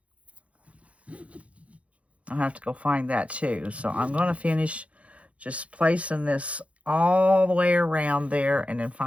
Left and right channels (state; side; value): late; left; 0.064 ms